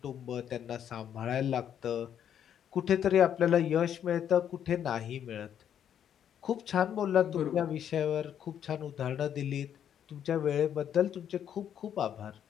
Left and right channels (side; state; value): right; quieter; 9.3 dB